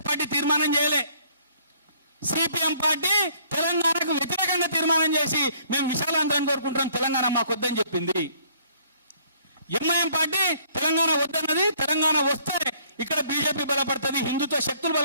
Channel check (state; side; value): inverted; both; correlation -0.61